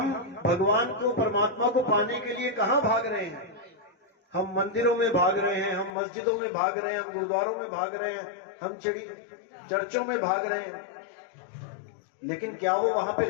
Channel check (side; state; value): right; drops out; at 6.0 s